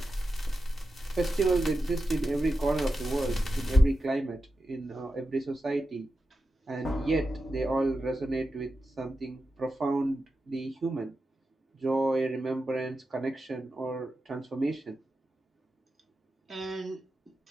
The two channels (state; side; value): normal; both; correlation 0.90